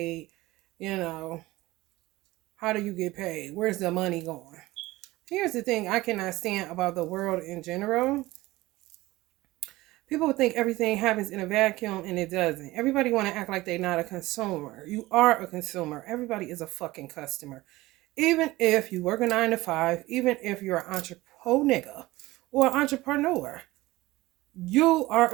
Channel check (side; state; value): left; quieter; 18.9 dB